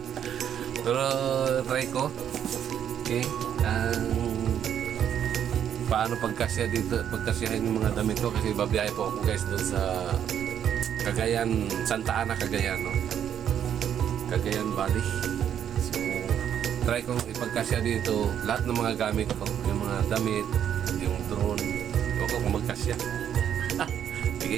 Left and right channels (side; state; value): left; quieter; 9.3 dB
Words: Pero try ko. Okay? Paano pagkasya dito, pagkasyahin yung mga damit ko kasi babiyahe po ako guys doon sa Cagayan, Santa Ana, Cagayan, no? Cagayan Valley. So, try kong ipagkasya dito lahat ng mga gamit ko, yung mga damit, yung drone. Ewan ko kung magkasya. Sige